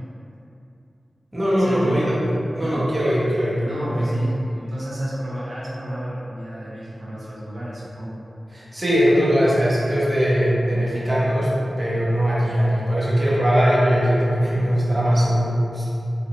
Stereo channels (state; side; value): normal; both; correlation 0.95